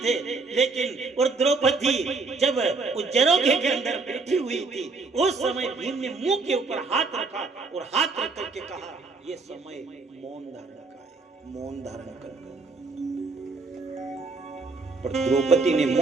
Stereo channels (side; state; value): left; quieter; 4.0 dB